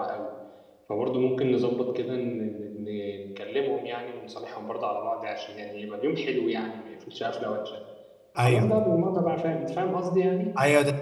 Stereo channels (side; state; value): both; identical; correlation 1.00